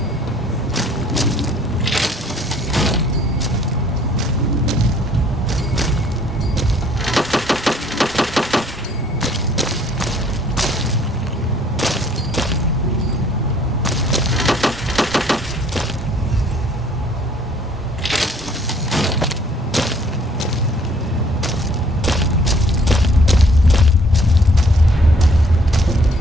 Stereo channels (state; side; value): normal; both; correlation 0.59